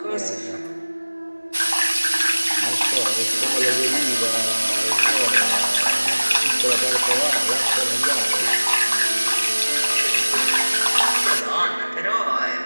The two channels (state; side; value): inverted; both; correlation -1.00